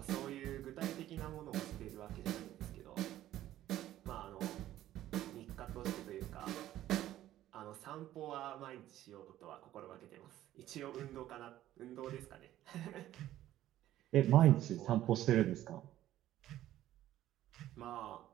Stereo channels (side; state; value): left; quieter; 13.5 dB